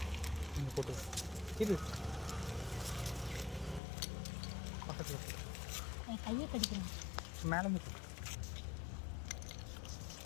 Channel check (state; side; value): drops out; right; at 3.8 s